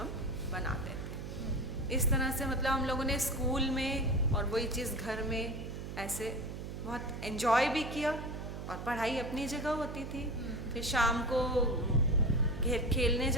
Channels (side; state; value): right; noise; hum, 8 dB below the sound